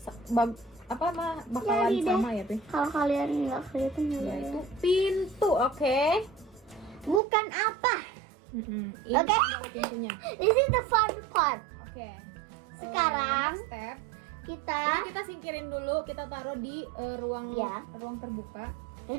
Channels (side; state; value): left; drops out; at 7.2 s